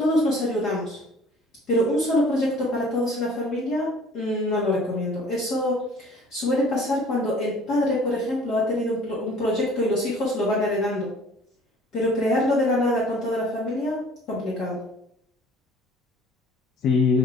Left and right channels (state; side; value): normal; both; correlation 0.51